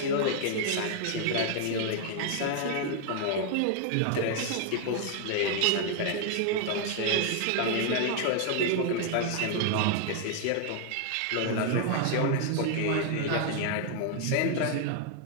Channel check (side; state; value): both; different; correlation 0.00